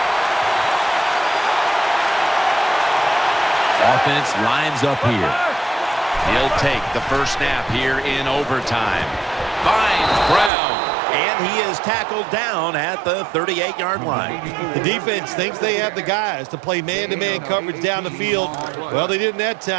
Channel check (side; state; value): left; drops out; at 10.5 s